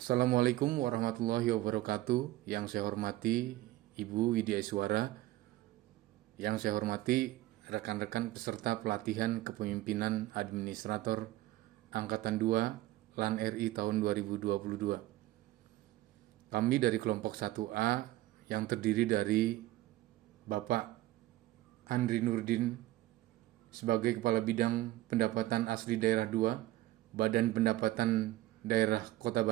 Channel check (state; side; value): quieter; left; 16.3 dB